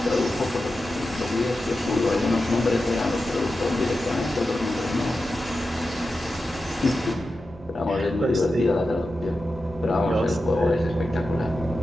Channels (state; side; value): normal; both; correlation 0.91